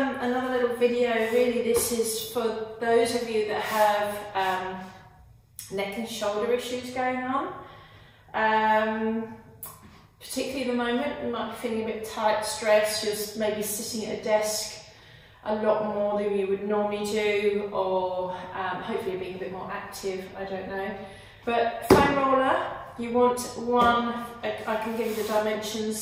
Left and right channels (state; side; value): identical; both; correlation 1.00